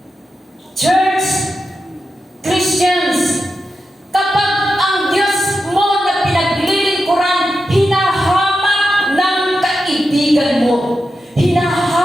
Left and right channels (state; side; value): normal; both; correlation 0.89